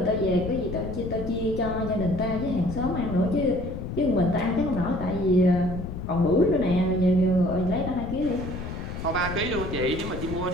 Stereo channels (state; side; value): noise; left; rumble, 7 dB below the sound